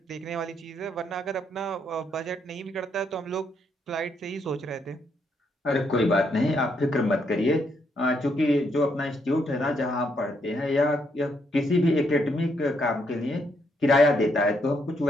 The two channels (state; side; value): normal; both; correlation 0.75